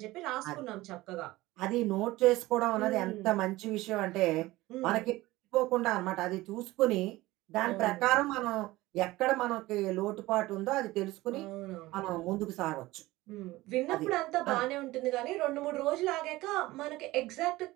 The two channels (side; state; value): left; quieter; 18.7 dB